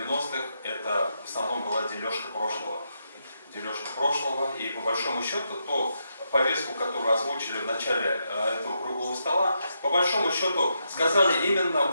это в основном была дележка прошлого. Дележка прошлого, и по большому счету, то повестку, которую озвучили в начале этого круглого стола, по большому счету сказали именно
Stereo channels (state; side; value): inverted; both; correlation -0.82